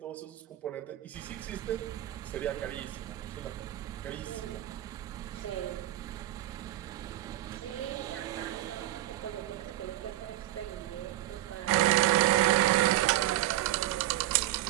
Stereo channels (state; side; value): quieter; left; 15.0 dB